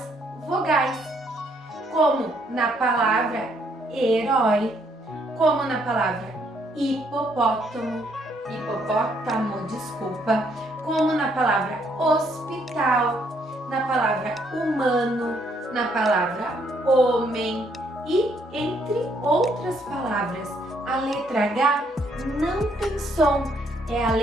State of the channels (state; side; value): normal; both; correlation 0.70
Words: vogais. Como na palavra herói, como na palavra hipopótamo, como na palavra hospital, na palavra humano, na palavra homem e entre outras palavras. A letra H não tem som, é a